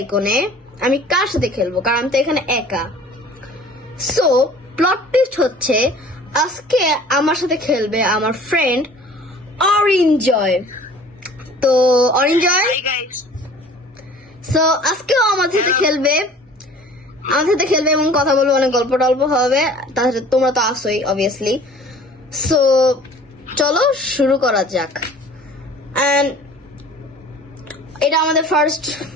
আমি কার সাথে খেলবো কারণ আমি তো এখানে একা। সো প্লট টুইস্ট হচ্ছে আজকে আমার সাথে খেলবে আমার ফ্রেন্ড অরিঞ্জয়। তো অরিঞ্জয় সো আজকেও আমাদের সাথে খেলবে এবং কথা বলবো, অনেক গল্প টল্প হবে, তাহলে তোমরা তো আসোই অবভিয়াসলি। সো চলো শুরু করা যাক। এন্ড এটা আমাদের ফার্স্ট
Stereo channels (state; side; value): normal; both; correlation 0.48